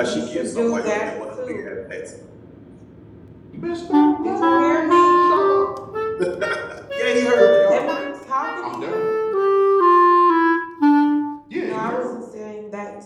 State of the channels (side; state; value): both; identical; correlation 1.00